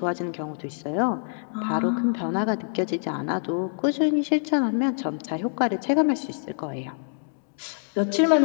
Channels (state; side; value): silent; right; digital silence